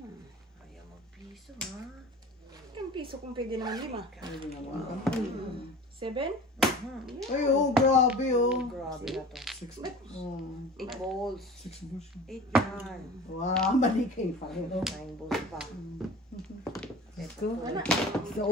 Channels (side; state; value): both; normal; correlation 0.39